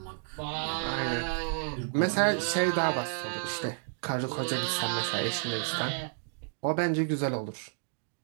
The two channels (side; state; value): left; silent; digital silence